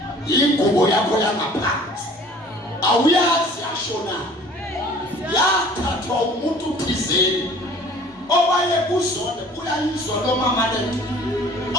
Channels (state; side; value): normal; both; correlation 0.49